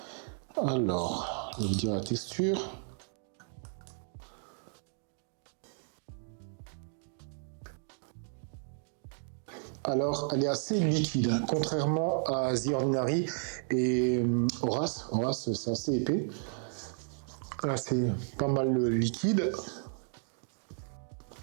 Alors, je vais vous dire la texture. Alors, elle est assez liquide, hein, contrairement à The Ordinary et Horace. Horace, c'est assez épais. Là, c'est pas mal liquide.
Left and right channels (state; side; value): silent; left; 56 dB below the other